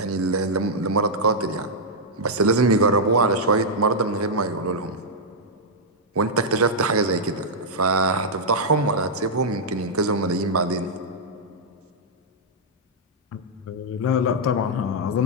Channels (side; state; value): both; normal; correlation -0.07